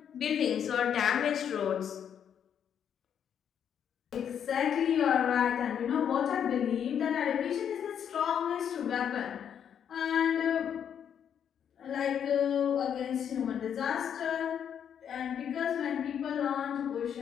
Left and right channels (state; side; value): quieter; right; 8.6 dB